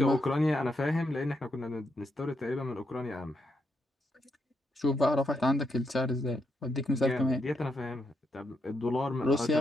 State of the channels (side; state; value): both; normal; correlation 0.80